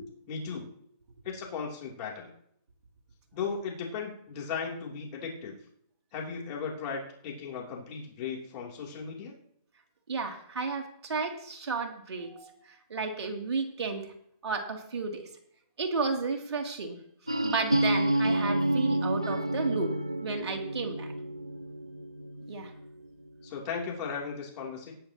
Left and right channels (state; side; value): inverted; both; correlation -0.63